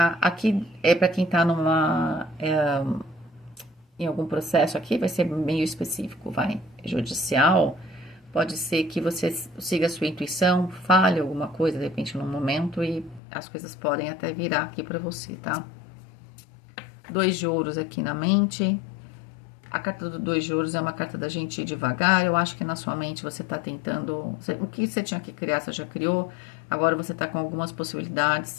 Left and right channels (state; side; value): drops out; right; at 13.2 s